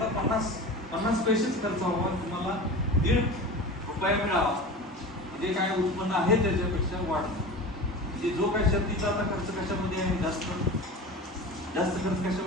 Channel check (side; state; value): both; normal; correlation 0.33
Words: 50 पैसेच खर्च व्हावा, तुम्हाला 1.5 रुपया मिळावा, म्हणजे काय उत्पन्न आहे त्याच्यापेक्षा वाढतं. म्हणजे जो काय शेतीचा आता खर्च कशामध्ये आहे, जास्त खर्च